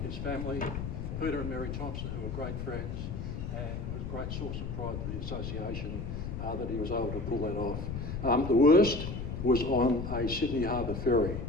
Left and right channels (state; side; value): noise; left; rumble, 5 dB below the sound